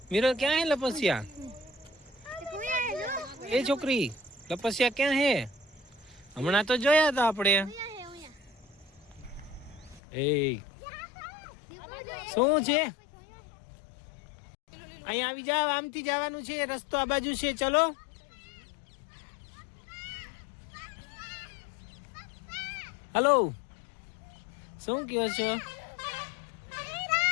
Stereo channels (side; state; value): right; drops out; at 10.0 s